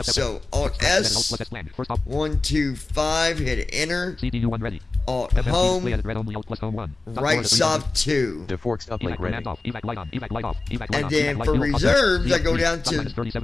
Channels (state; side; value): quieter; right; 3.3 dB